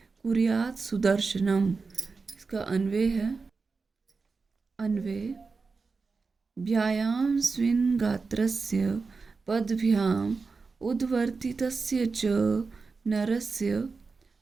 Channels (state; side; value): quieter; left; 4.5 dB